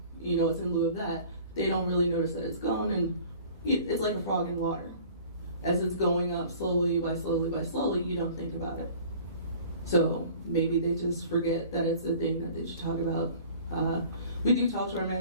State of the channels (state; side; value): inverted; both; correlation -0.48